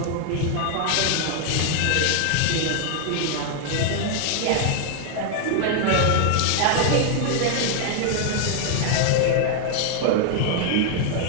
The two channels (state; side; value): different; both; correlation 0.00